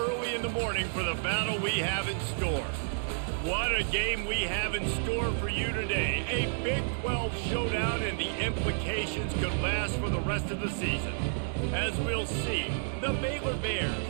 in the morning for the battle we have in store. What a game we have in store for you today. A Big 12 showdown, and the implications could last for the rest of the season. As we'll see, the Baylor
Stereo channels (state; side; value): silent; left; 56 dB below the other